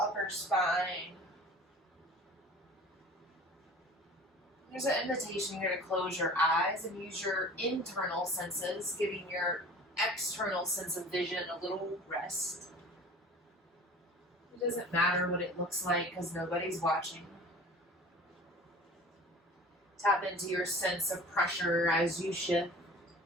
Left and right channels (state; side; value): normal; both; correlation 0.43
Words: spine. There's an invitation here to close your eyes and use your internal senses, giving your external sense of vision a little rest. It doesn't matter what it looks like because nobody's watching. Tap into your sense of pressure as you shift.